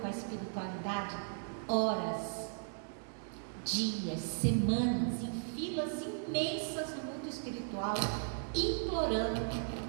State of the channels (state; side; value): silent; left; digital silence